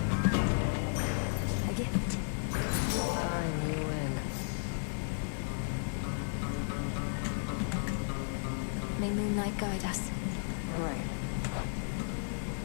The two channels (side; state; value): right; silent; digital silence